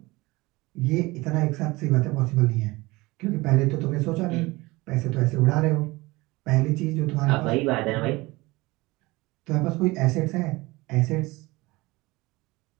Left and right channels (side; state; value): left; quieter; 21.8 dB